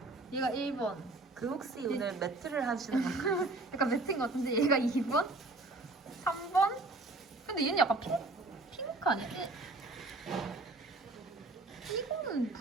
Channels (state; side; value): quieter; left; 3.1 dB